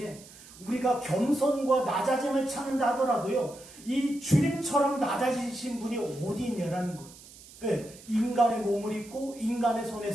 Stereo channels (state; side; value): noise; right; hiss, 20 dB below the sound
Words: 우리가 겸손과 낮아짐을 찾는다 하더라도요, 이 주님처럼 낮아지신 분이 어디 있냐라는 거예요. 인간의 몸을 입고 인간의